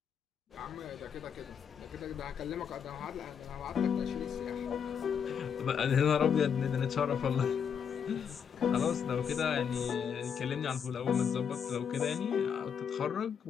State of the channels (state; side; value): quieter; right; 7.4 dB